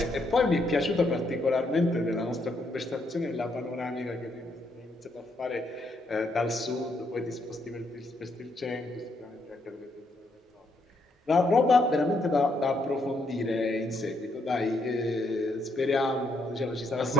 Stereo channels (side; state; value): both; normal; correlation 0.73